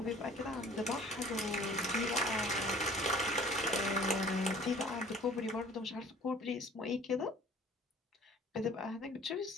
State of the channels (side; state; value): both; normal; correlation 0.50